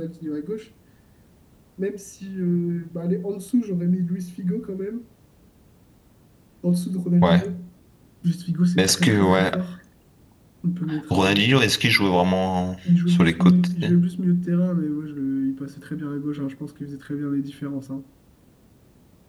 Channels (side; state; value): both; identical; correlation 1.00